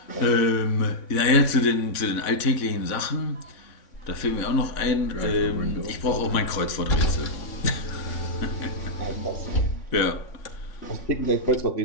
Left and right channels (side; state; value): right; late; 3.6 ms